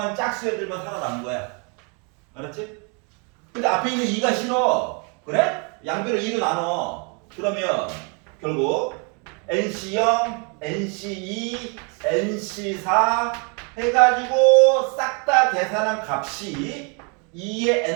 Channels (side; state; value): left; quieter; 35.1 dB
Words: 짝수 애들만 살아남은 거야. 알았지? 근데 앞에 있는 2가 싫어. 그래? 양변을 2로 나눠. 그러면 결국 NC0, NC2, NC4 해가지고 싹 다 계산한 값이 2의